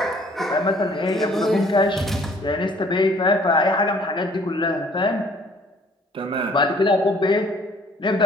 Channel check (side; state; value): both; normal; correlation 0.58